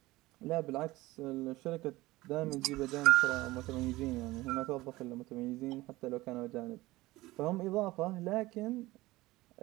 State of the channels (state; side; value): quieter; left; 19.1 dB